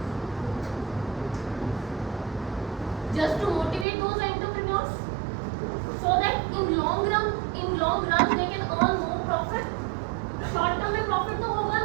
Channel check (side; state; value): left; drops out; at 3.9 s